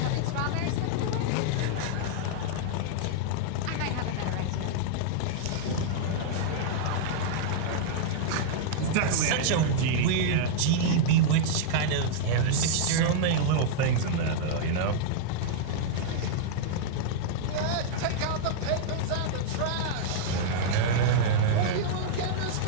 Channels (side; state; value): both; different; correlation -0.01